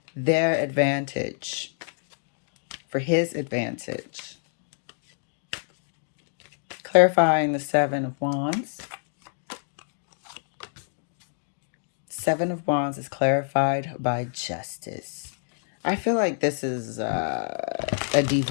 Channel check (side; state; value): right; silent; digital silence